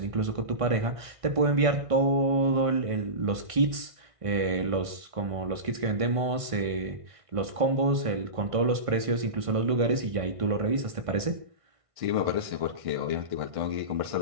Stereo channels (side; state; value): left; late; 1.6 ms